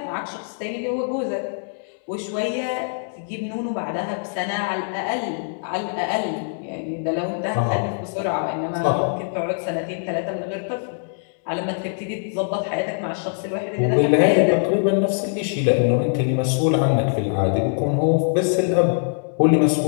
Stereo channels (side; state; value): right; silent; digital silence